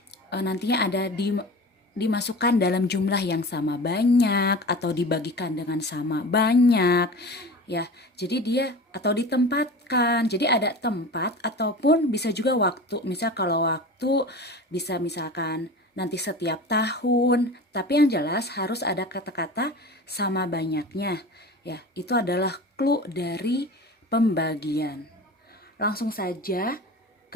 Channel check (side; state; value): both; normal; correlation 0.35